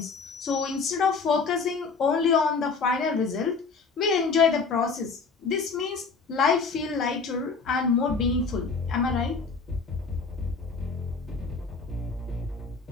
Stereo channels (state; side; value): quieter; right; 4.7 dB